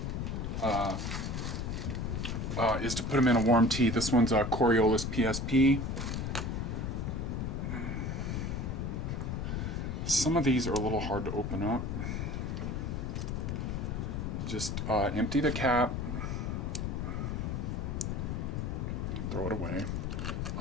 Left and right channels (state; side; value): noise; left; rumble, 2 dB below the sound